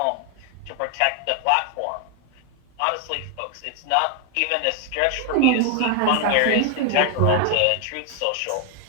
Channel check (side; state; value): both; different; correlation 0.01